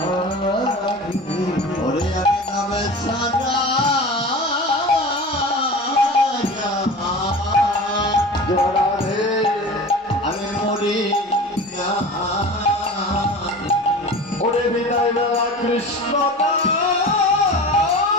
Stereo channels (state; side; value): normal; both; correlation 0.35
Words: ওরে আমি নামে সারা জোড়া রে আমি মরি না ওরে বিদায় বেলা কৃষ্ণ